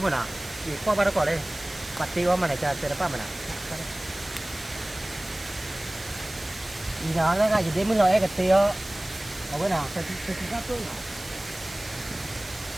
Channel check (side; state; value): right; noise; hiss, 16 dB below the sound